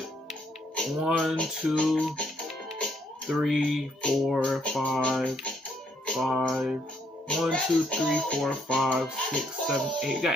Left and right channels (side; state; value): both; normal; correlation 0.71